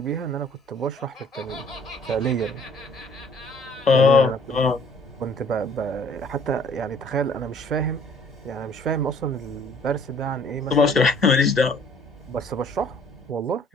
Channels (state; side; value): normal; both; correlation 0.57